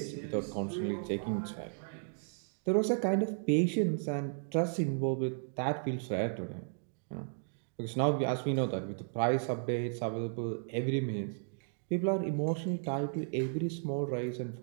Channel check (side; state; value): left; silent; digital silence